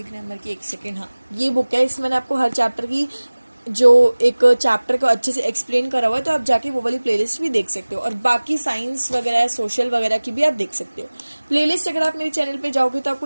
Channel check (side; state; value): both; inverted; correlation -1.00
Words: ग्रामर की, एक सेकेंड, हाँ ये बुक है। इसमें मैंने आपको हर चैप्टर की जो एक चैप्टर को अच्छे से एक्सप्लेन करा हुआ है, तो आप जाके वो वाली प्लेलिस्ट भी देख सकते हो। और बाकी साइंस वगैरह, सोशल वगैरह की भी आप देख सकते हो प्लेलिस्ट। अगर आप मेरे चैनल पे जाओगे तो आपको